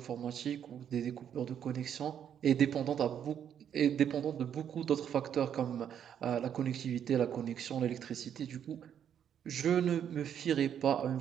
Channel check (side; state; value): left; quieter; 9.0 dB